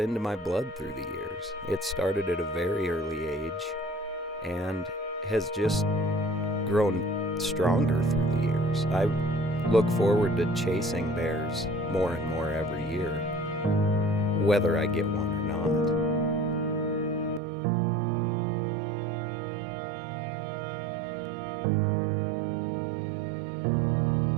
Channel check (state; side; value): drops out; left; at 17.4 s